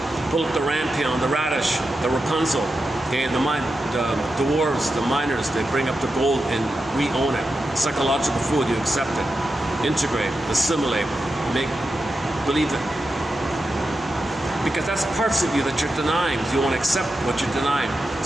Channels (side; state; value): both; normal; correlation 0.89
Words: Pull up the rampion, the radish, the Rapunzel. Okay, the dwarves, the miners, they bring up the gold and re-own it. Psychological food, you accept it. Integrate, assimilate, believe it. Because that's parts of you that you're denying. You want to accept what you're denying.